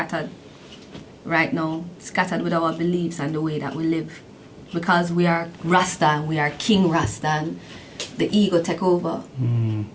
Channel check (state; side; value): identical; both; correlation 1.00